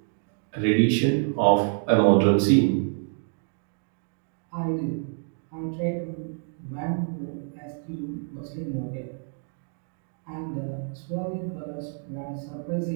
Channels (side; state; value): left; silent; 60 dB below the other